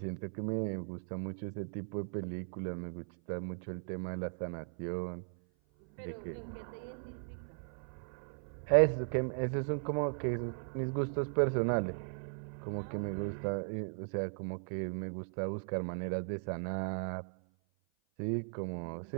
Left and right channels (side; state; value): left; silent; 53 dB below the other